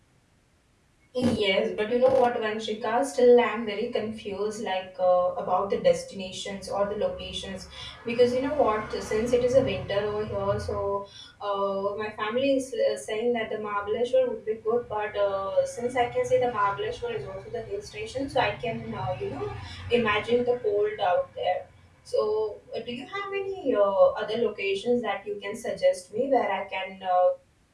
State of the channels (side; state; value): both; identical; correlation 1.00